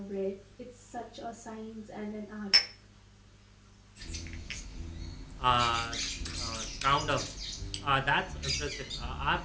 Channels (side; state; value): both; identical; correlation 1.00